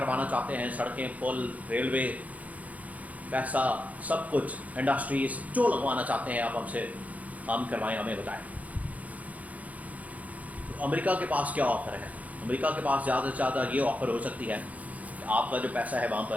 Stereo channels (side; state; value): left; late; 0.072 ms